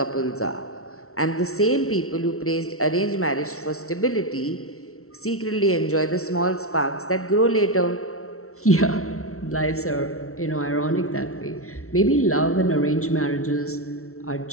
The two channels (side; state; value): right; late; 0.63 ms